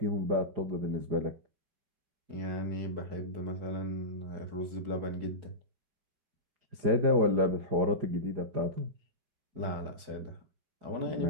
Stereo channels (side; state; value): left; late; 4.6 ms